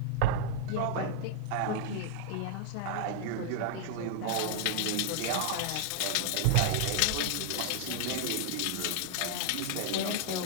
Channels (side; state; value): both; different; correlation 0.00